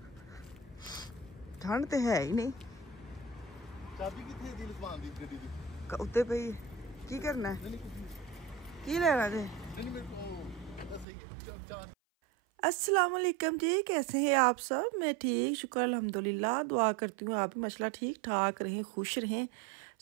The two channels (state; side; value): drops out; left; at 11.1 s